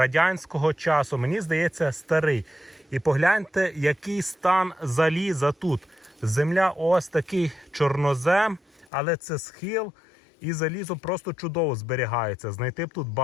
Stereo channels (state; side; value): drops out; right; at 8.8 s